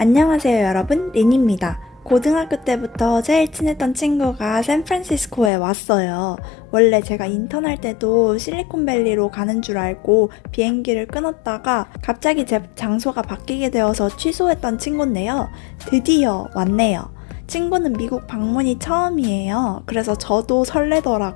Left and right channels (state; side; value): drops out; right; at 5.5 s